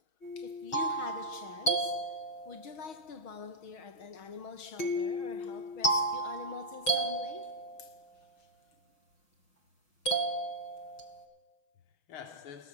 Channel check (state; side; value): late; right; 6.3 ms